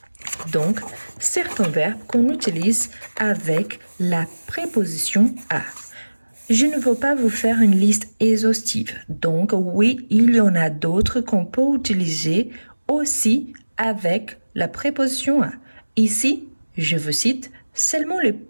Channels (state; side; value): inverted; both; correlation -1.00